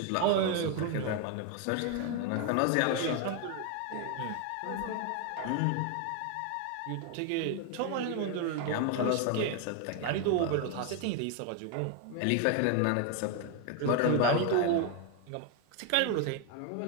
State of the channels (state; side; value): different; both; correlation 0.01